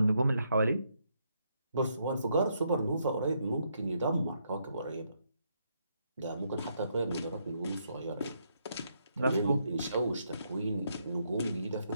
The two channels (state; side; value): inverted; both; correlation -0.76